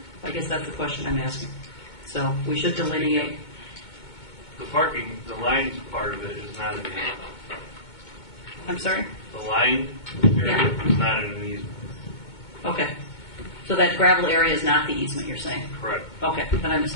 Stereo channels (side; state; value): right; late; 2.2 ms